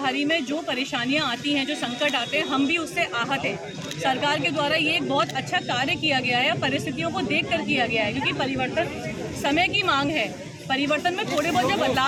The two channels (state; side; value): identical; both; correlation 1.00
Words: में जो परेशानियां आती हैं, जो संकट आते हैं, हम भी उससे आहत हैं। सरकार के द्वारा ये एक बहुत अच्छा कार्य किया गया है, परिस्थितियों को देखकर किया गया है, क्योंकि परिवर्तन समय की मांग है। परिवर्तन में थोड़े बहुत जब